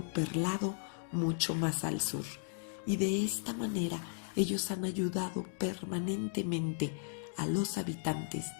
perlado, mucho más al sur. Y de esta manera ellos han ayudado permanentemente a los habitantes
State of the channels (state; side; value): silent; right; digital silence